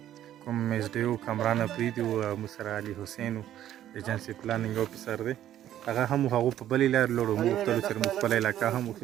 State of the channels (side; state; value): left; quieter; 11.8 dB